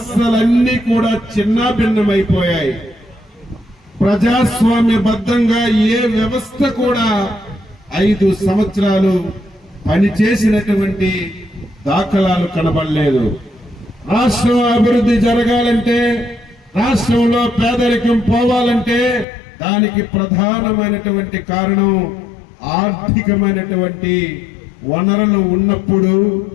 కూడా చిన్నాభిన్నమైపోయాయి. ప్రజాస్వామ్యబద్ధంగా ఏ వ్యవస్థ కూడా 5 సంవత్సరాలు పనిచేసినటువంటి దాఖలాలు కనబడలేదు. రాష్ట్రం అభివృద్ధి జరగాలంటే, రాష్ట్రంలో పేదరికం పోవాలంటే దానికి ప్రధానమైనటువంటి కారణం ఆర్థికమైనటువంటి వనరులు ఉన్నప్పుడు,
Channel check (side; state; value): right; drops out; at 19.2 s